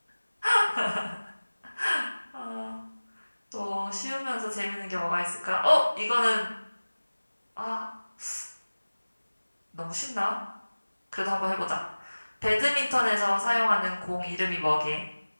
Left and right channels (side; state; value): both; inverted; correlation -1.00